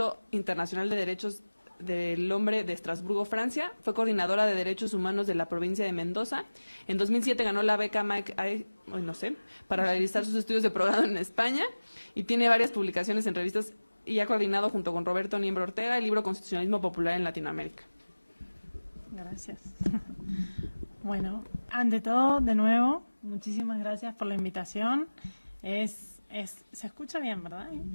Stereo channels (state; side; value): inverted; both; correlation -1.00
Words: Internacional de Derechos del Hombre de Estrasburgo, Francia. Fue coordinadora de Derechos Humanos de la provincia de Mendoza. En 2007 ganó la beca para realizar sus estudios de progrado en España y tiene varias publicaciones en revistas y ha coordinado junto con Roberto Niembro Ortega el libro Constitucionalismo Popular en Latinoamérica. Gracias. Bueno, ante todo, de nuevo, muchísimas gracias por la invitación. Se escucha bien, ¿verdad?